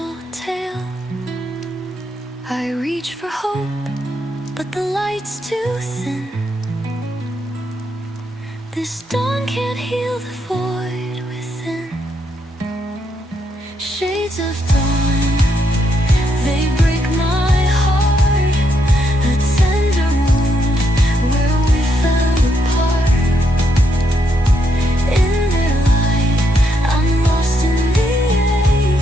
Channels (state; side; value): normal; both; correlation 0.78